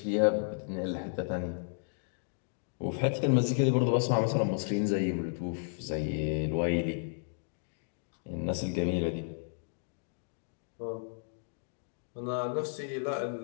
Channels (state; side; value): silent; right; digital silence